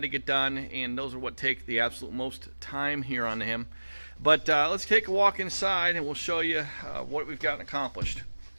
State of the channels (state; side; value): inverted; both; correlation -1.00